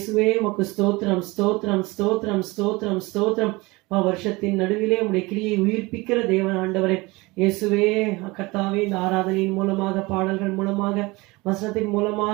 உமக்கு ஸ்தோத்திரம் ஸ்தோத்திரம் ஸ்தோத்திரம் ஸ்தோத்திரம் ஸ்தோத்திரம். வருஷத்தின் நடுவிலே உடைய கிரியை உயிர்ப்பிக்கிற தேவன் ஆண்டவரே இயேசுவே, கர்த்தாவே, இந்த ஆராதனையின் மூலமாக, பாடல்கள் மூலமாக, வசனத்தின்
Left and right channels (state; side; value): quieter; left; 23.3 dB